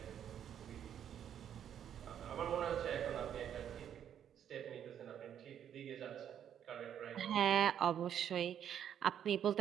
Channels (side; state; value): left; quieter; 9.4 dB